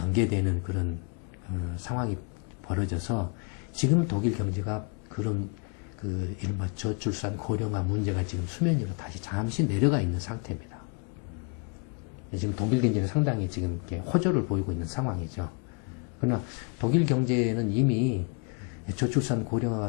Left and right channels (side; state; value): right; quieter; 35.4 dB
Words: 그런 상황이 벌어져서 지금 독일 경제가 그런 이른바 저출산 고령화 문제가 지금 수면 위로 다시 잠시 내려가 있는 상태입니다. 지금 독일 경제는 상당히 지금 이렇게 호조를 보이고 있는 상황이죠. 그러나 독일 경제는 이미 저출산 고령화가